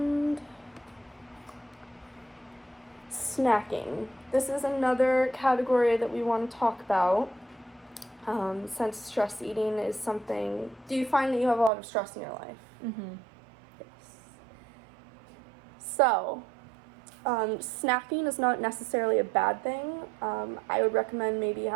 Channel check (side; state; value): left; drops out; at 11.7 s